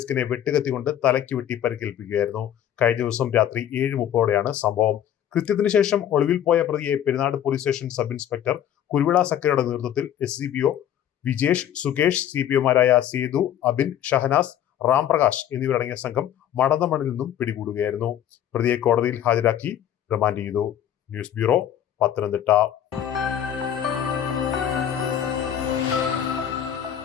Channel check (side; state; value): right; quieter; 10.4 dB